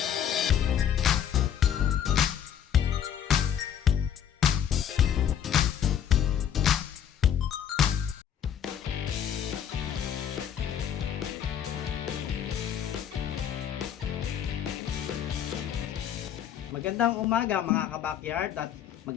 Magandang umaga mga kabakyard at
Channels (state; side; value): quieter; right; 9.3 dB